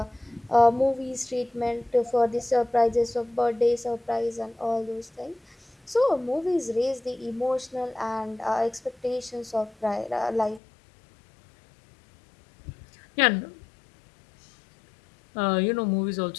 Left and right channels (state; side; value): drops out; right; at 10.6 s